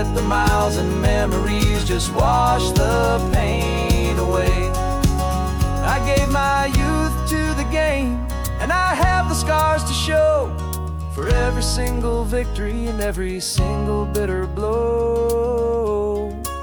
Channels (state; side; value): identical; both; correlation 1.00